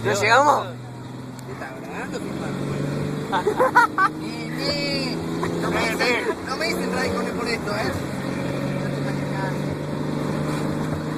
¿no llegamos? ¿Qué está grabando, filmando? No me dicen radicales por esto,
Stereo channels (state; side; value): identical; both; correlation 1.00